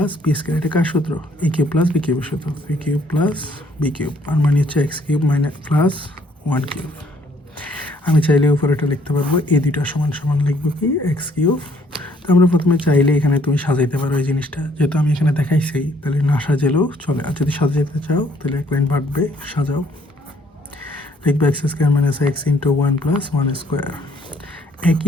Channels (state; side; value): normal; both; correlation 0.64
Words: B square, এটা কার সূত্র? এ কিউব প্লাস বি কিউবের সূত্র, B cube plus B cube, আর মানে হচ্ছে X cube minus plus one cube. আমি চাইলে উপরে এটা লিখতে পারবো, এই দুইটা সমান সমান লিখবো কি এক্স কিউব। তো আমরা প্রথমে চাইলে এখানে তুমি সাজাইতে পারো এই জিনিসটা, যেহেতু আমি এখানে দেখাইছি তাহলে না সাজালেও চলে, আর যদি সাজাইতে চাও তাহলে এক লাইন বাড়বে, সাজাও। লিখবো x square minus x into one plus one square.